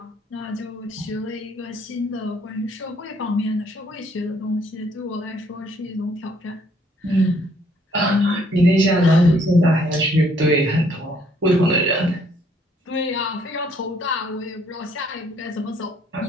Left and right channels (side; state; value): both; normal; correlation 0.65